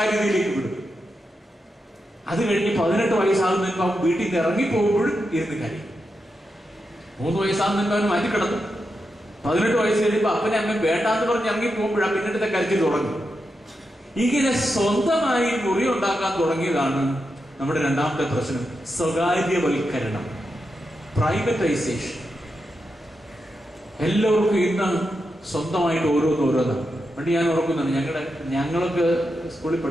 വിടും. അത് കഴിഞ്ഞ് 18 വയസ്സാകുന്നതിന് മുമ്പ് അവൻ വീട്ടിൽ നിന്ന് ഇറങ്ങിപ്പോകുമ്പോഴും ഇരുന്ന് കാര്യം. 3 വയസ്സാകുന്നതിന് മുമ്പ് അവൻ മാറ്റി കിടത്തും. 18 വയസ്സ് കഴിയുമ്പോൾ അപ്പനെ അമ്മ വേണ്ടാന്ന് പറഞ്ഞ് ഇറങ്ങിപ്പോകുമ്പോഴാണ് പിന്നീട് കരുത്തിൽ തുടങ്ങും. ഇങ്ങനെ സ്വന്തമായി മുറി ഉണ്ടാക്കാൻ തുടങ്ങിയതാണ് നമ്മുടെ രണ്ടാമത്തെ പ്രശ്നം, സ്വകാര്യവൽക്കരണം, പ്രൈവറ്റൈസേഷൻ. എല്ലാവർക്കും ഇന്ന് സ്വന്തമായിട്ട് ഓരോന്നാണ്. പണ്ട് ഞാൻ ഓർക്കുന്നുണ്ട്, ഞങ്ങളൊക്കെ സ്കൂളിൽ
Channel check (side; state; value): both; normal; correlation 0.87